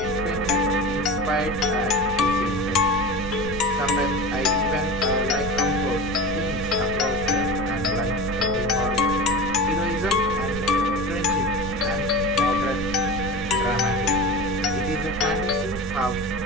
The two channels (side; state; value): right; noise; rumble, 10 dB below the sound